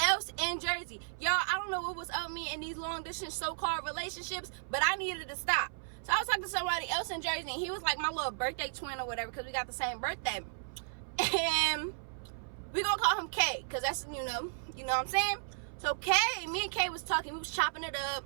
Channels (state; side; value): silent; left; 55 dB below the other